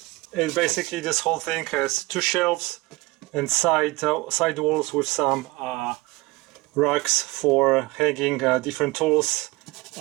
It basically, this whole thing has two shelves and side walls with some racks for hanging different tools.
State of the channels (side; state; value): left; quieter; 22.7 dB